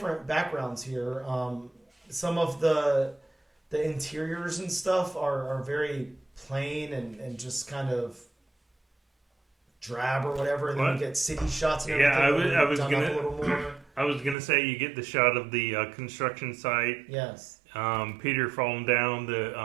backgrounds here. Some of the interiors and stuff are very plain and just kind of drab or whatever, and then you get city shots and everything. I was gonna say you get the shot of the construction site. Yes. Peter falling down the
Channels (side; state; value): left; drops out; at 14.4 s